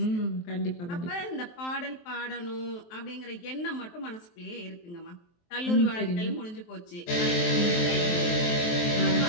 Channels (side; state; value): right; late; 23 ms